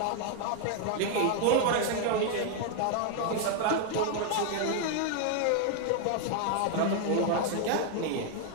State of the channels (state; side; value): different; both; correlation 0.00